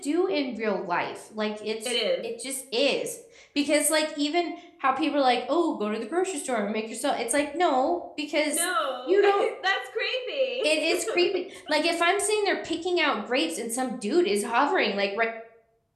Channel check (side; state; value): both; identical; correlation 1.00